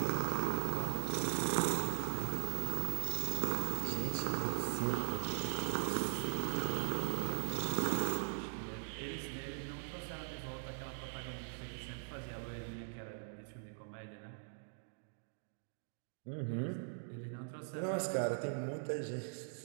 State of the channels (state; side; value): silent; left; digital silence